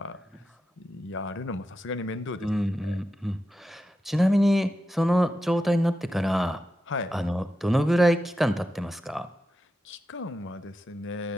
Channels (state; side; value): normal; both; correlation 0.89